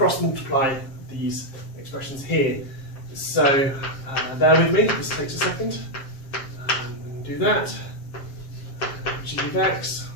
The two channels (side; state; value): right; late; 7.5 ms